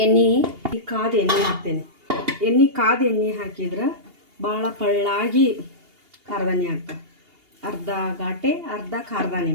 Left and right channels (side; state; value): left; late; 2.8 ms